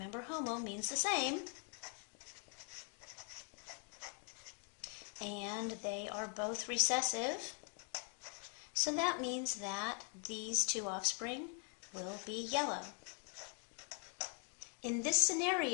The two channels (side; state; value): right; quieter; 37.8 dB